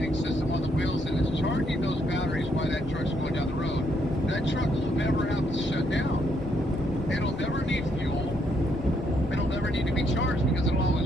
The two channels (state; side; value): normal; both; correlation 0.74